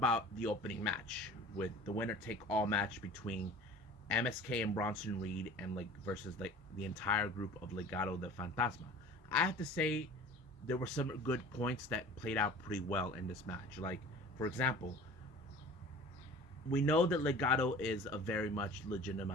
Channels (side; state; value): both; normal; correlation 0.42